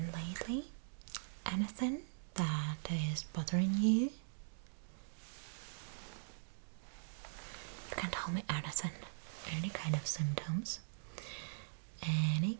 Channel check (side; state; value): left; silent; digital silence